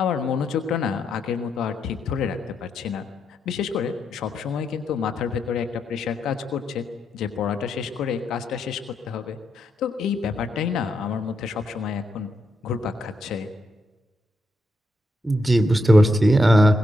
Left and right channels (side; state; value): both; normal; correlation 0.81